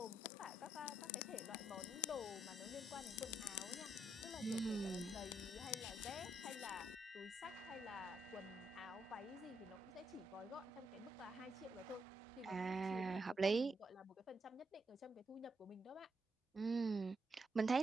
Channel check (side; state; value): both; normal; correlation 0.78